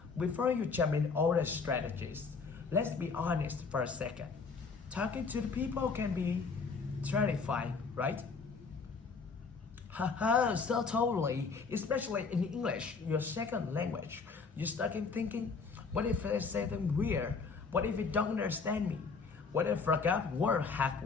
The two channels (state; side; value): quieter; right; 4.8 dB